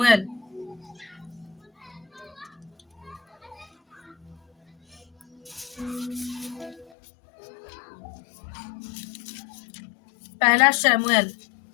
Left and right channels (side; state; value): right; drops out; at 6.9 s